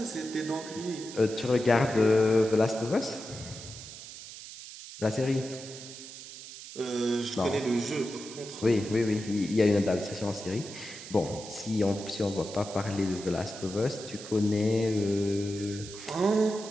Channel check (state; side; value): noise; right; hiss, 13 dB below the sound